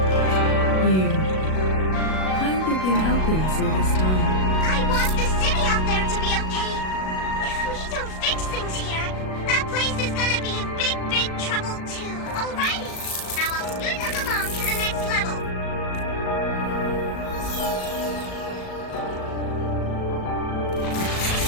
You. How have you been helping us all this time? I want the city out there to be okay. If we don't fix things here, that place is gonna be in big, big trouble too. Alrighty, now I'll scoot us along to the next level.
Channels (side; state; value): right; late; 37 ms